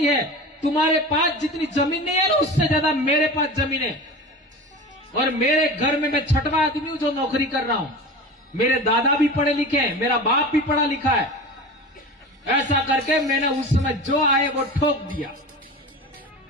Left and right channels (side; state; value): both; normal; correlation 0.32